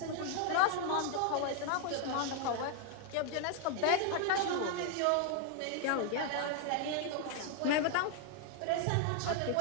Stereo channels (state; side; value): different; both; correlation 0.00